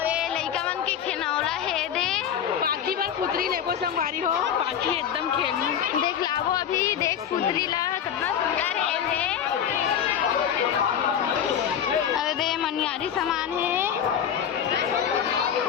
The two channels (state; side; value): quieter; right; 8.9 dB